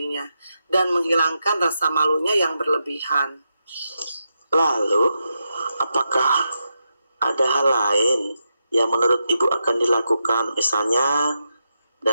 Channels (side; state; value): both; inverted; correlation -0.86